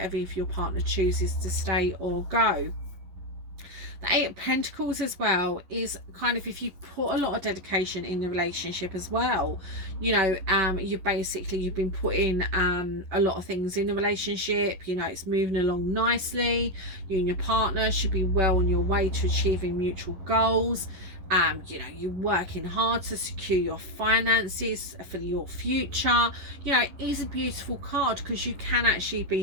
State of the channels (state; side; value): late; left; 11 ms